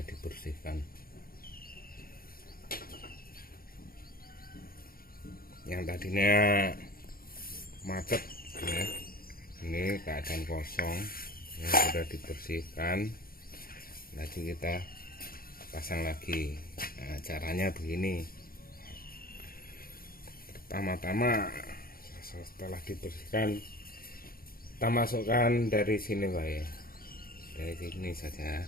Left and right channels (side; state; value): right; late; 0.43 ms